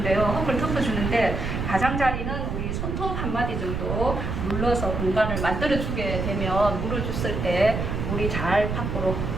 흙을 덮어주는데, 가장자리는 우리 손톱 한 마디 정도 눌러서 공간을 만들어주게 되면, 물을 줬을 때 물이 잘 밖으로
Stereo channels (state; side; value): noise; right; rumble, 2 dB below the sound